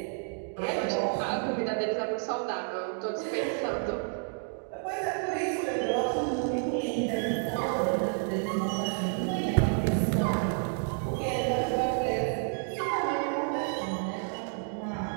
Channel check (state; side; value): silent; left; 58 dB below the other